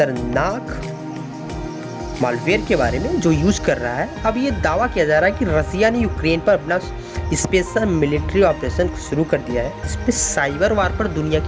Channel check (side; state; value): both; identical; correlation 1.00